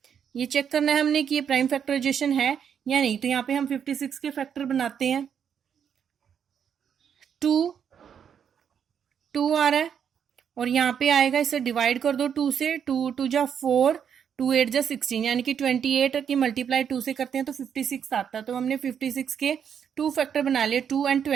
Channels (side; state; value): left; quieter; 8.0 dB